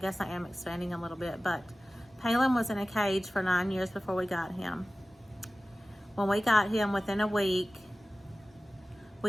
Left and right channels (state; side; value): normal; both; correlation 0.96